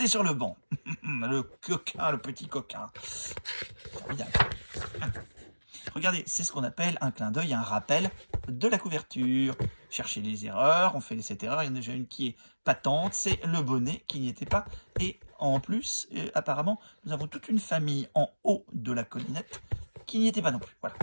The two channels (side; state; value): both; inverted; correlation -1.00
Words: sur le banc. Le petit coquin. Formidable. Regardez, c'est ce qu'on appelle un clin d'œil, un rappel de la couverture. Cherchez les erreurs, on fait cette erreur, il y en a déjà une qui est patente, c'est le bonnet qui n'y était pas. Et en plus, apparemment, nous avons toute une famille en haut de la collinette qui n'y était pas non plus. Voilà,